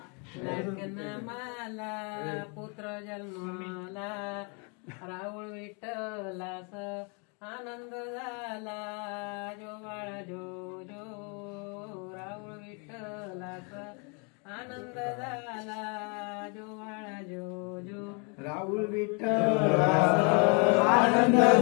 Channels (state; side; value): quieter; right; 35.3 dB